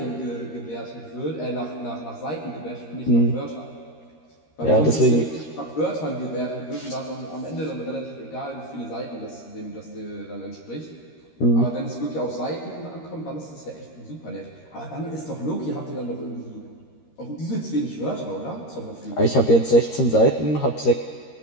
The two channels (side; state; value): right; late; 13 ms